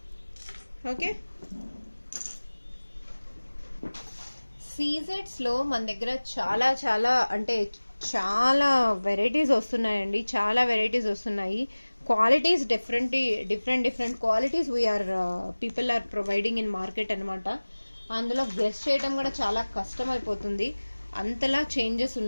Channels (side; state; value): both; inverted; correlation -1.00